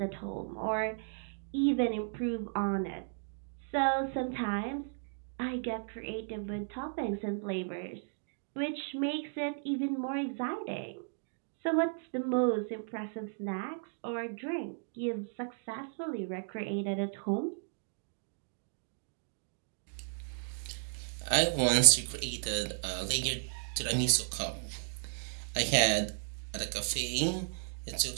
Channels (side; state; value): left; silent; digital silence